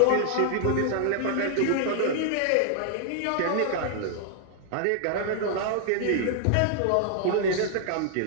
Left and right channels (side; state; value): both; different; correlation 0.00